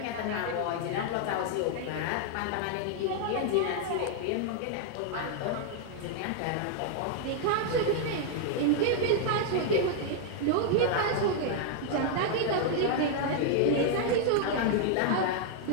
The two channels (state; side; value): different; both; correlation 0.00